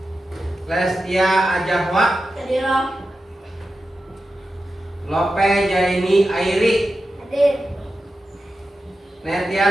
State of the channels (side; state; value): both; normal; correlation 0.91